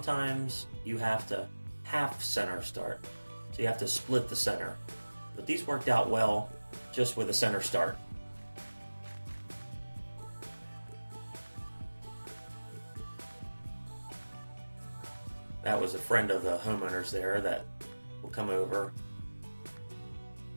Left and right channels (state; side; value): inverted; both; correlation -1.00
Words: you have to half center start. So you have to split the center. But these worked out well just with a center start. That was a friend of the homeowners there that will come over.